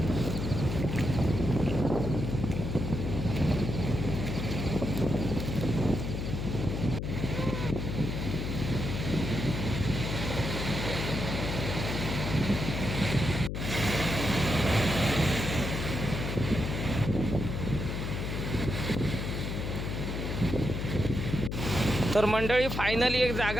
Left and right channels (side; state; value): left; noise; hum, 3 dB below the sound